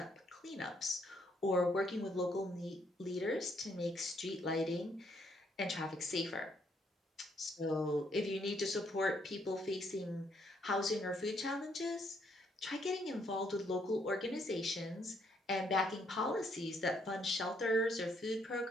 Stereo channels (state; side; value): normal; both; correlation 0.71